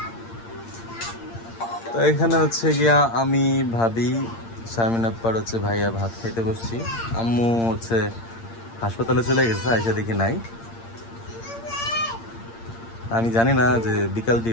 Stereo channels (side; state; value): right; late; 8.7 ms